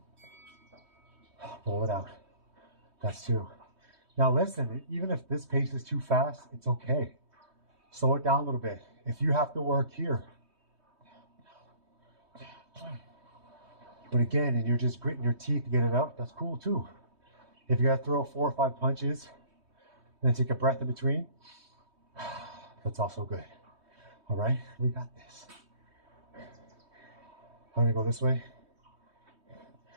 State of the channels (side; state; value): left; late; 3.2 ms